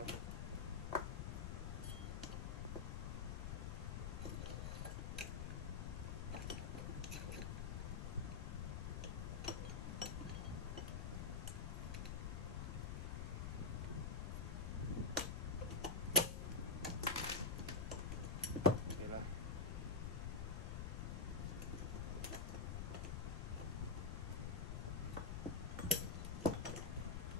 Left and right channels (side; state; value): left; noise; rumble, 1 dB below the sound